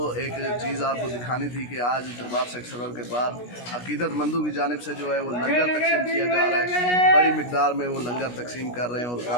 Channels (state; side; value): late; right; 17 ms